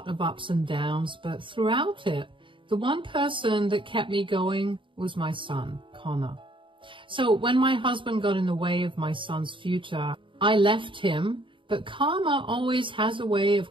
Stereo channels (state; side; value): late; left; 0.24 ms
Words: of ups and downs, but throughout it, the one person that kept me going was my son, Connor. So when my husband got in the way of my son's future, I left him, but karma always has a way